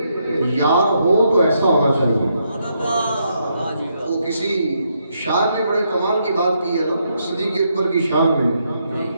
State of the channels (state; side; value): inverted; both; correlation -0.77